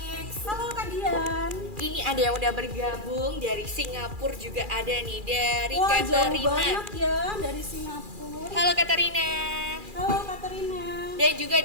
Halo Kak Dian. Ini ada yang udah bergabung dari Singapura, juga ada nih dari Wah, jauh Katarina. banget ya dari Singapura. Halo Katarina. Halo Katarina. Dan juga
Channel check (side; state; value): left; late; 2.4 ms